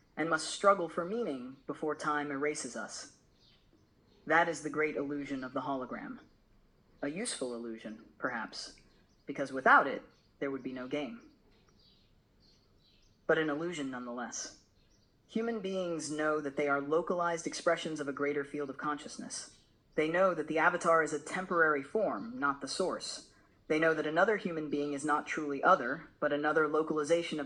and must struggle for meaning before time erases us. That is the great illusion of the hologram. A useful illusion, perhaps, because without it, there would be no game. But an illusion nonetheless. Human beings know that they are localized expressions of a greater field of consciousness. They know that the avatar is a temporary form, not the source. They know that another human being is not truly other, but another localization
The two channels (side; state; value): both; identical; correlation 1.00